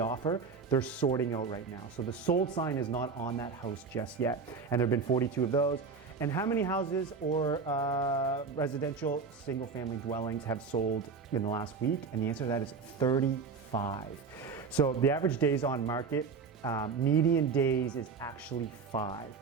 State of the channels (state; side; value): quieter; left; 5.0 dB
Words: offer, they're sorting out right now. So the sold sign is not on that house just yet. And there have been 42 of those. And how many houses or residential single family dwellings have sold in the last week? And the answer to that is 35. So the average days on market, median days is actually 5.